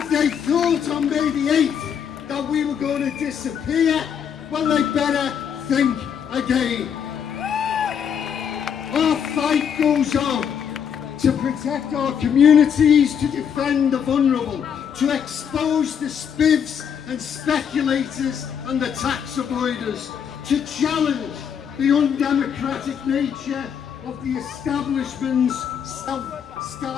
they thought on May the 8th that we were going to disappear, well, they better think again. Our fight goes on to protect our communities, to defend the vulnerable, to expose the spivs and speculators and the tax avoiders, to challenge the undemocratic nature of the establishment's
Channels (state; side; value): quieter; right; 7.8 dB